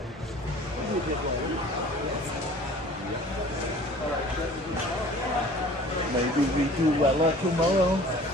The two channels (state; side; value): normal; both; correlation 0.47